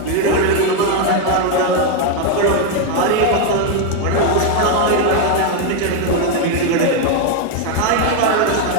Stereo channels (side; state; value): both; different; correlation 0.01